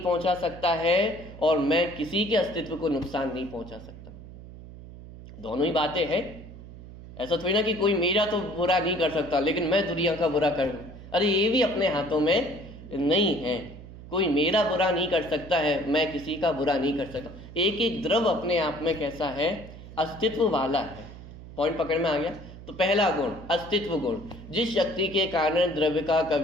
पहुंचा सकता है और मैं किसी के अस्तित्व को नुकसान नहीं पहुंचा सकता। दोनों ही बातें हैं। ऐसा थोड़ी ना कि कोई मेरा तो बुरा नहीं कर सकता लेकिन मैं दुनिया का बुरा कर दूं। अरे ये भी अपने हाथों में नहीं है। कोई मेरा बुरा नहीं कर सकता है, मैं किसी का बुरा नहीं कर सकता। एक एक द्रव अपने आप में कैसा है? अस्तित्व वाला है। पॉइंट पकड़ में आ गया? तो पहला गुण अस्तित्व गुण, जिस शक्ति के कारण द्रव्य का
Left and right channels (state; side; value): noise; right; hum, 15 dB below the sound